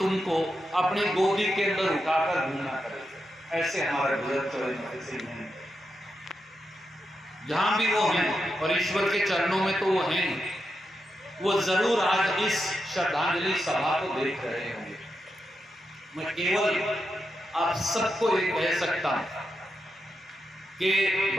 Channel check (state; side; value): normal; both; correlation 0.86